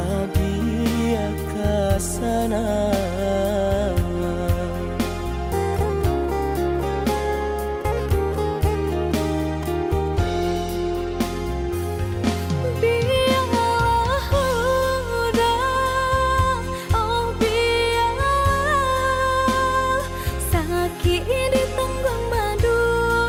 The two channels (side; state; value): both; identical; correlation 1.00